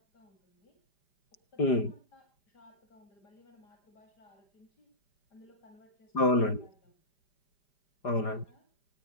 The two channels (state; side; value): late; right; 5.0 ms